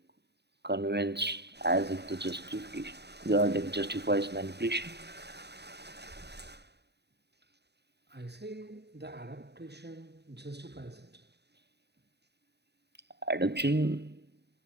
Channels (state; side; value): late; left; 0.49 ms